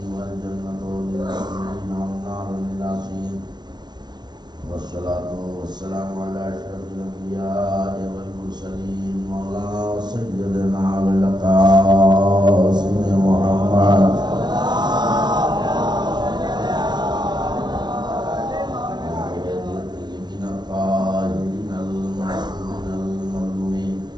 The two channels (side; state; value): left; late; 0.21 ms